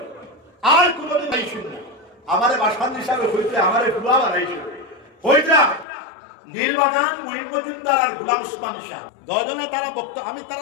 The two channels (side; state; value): right; drops out; at 5.9 s